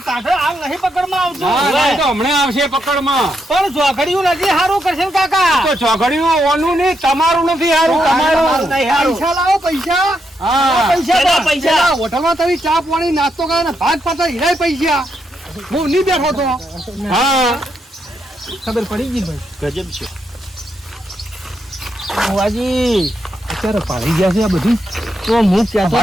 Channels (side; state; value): both; normal; correlation 0.80